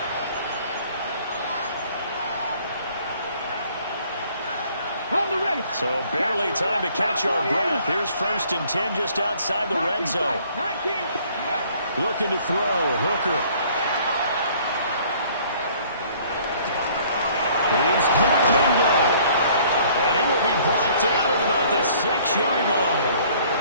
So barely time to catch our breath. Here's 1st and 10 just outside the red zone. Looking to throw. Hooker. He's good. Bingo. And he will be brought down at about the 6-yard line.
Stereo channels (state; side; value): inverted; both; correlation -0.57